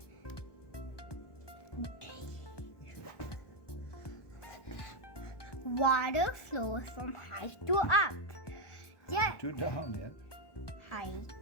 Water flows from high to up. Yeah. To down, yeah. High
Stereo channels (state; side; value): late; right; 1.2 ms